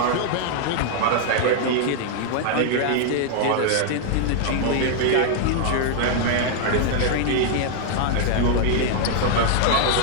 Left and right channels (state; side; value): different; both; correlation 0.00